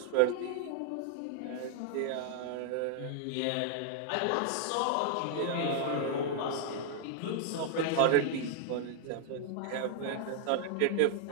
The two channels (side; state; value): both; different; correlation -0.01